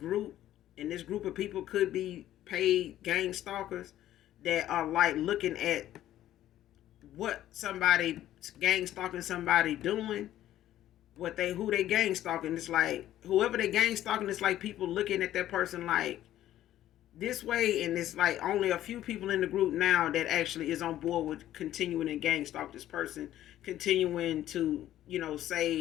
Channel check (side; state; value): right; quieter; 12.9 dB